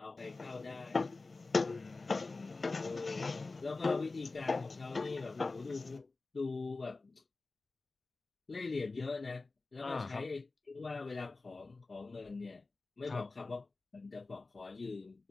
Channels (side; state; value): right; quieter; 3.6 dB